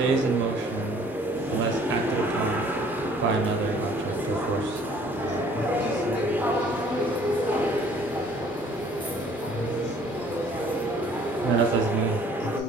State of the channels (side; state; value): both; normal; correlation 0.57